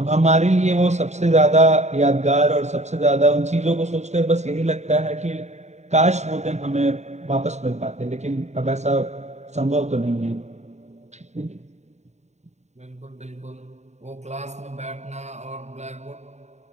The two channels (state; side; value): late; left; 0.33 ms